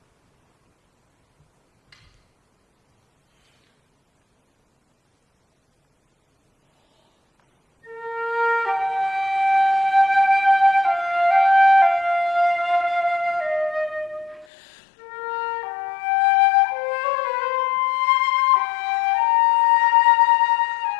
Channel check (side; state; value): right; drops out; at 14.5 s